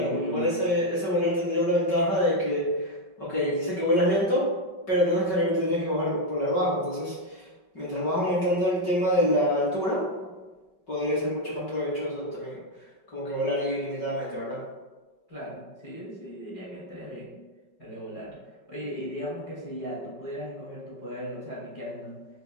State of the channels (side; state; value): right; late; 5.3 ms